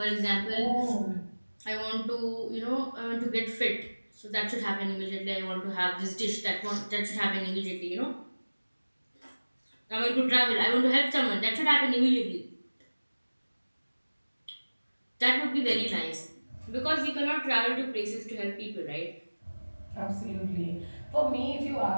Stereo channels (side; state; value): both; inverted; correlation -1.00